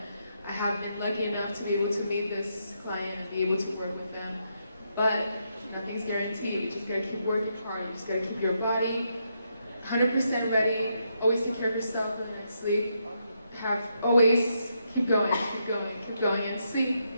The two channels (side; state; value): both; inverted; correlation -0.79